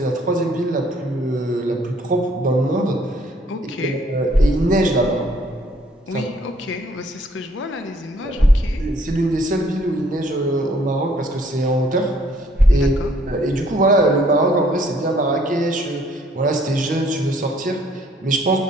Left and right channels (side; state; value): both; normal; correlation 0.63